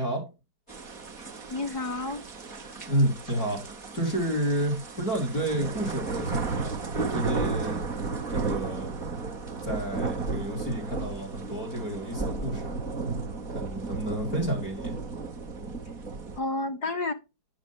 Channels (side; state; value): right; late; 4.1 ms